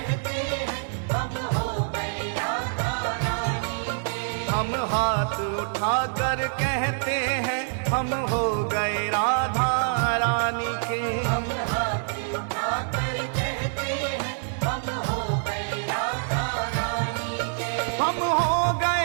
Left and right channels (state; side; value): silent; left; 61 dB below the other